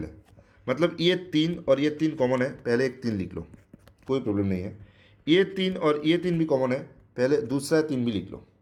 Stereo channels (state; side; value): identical; both; correlation 1.00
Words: मतलब ये 3 और ये 3 कॉमन है, पहले एक 3 लिख लो, कोई प्रॉब्लम नहीं है। ये 3 और ये 3 भी कॉमन है, पहले दूसरा 3 भी लिख लो।